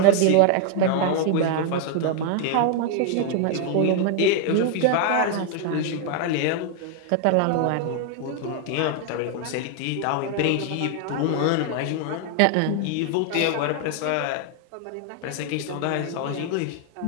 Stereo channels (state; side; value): different; both; correlation 0.00